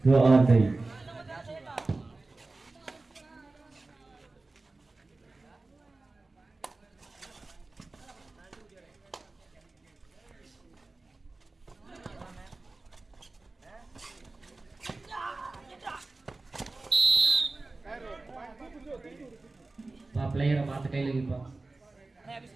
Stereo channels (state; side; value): quieter; left; 3.3 dB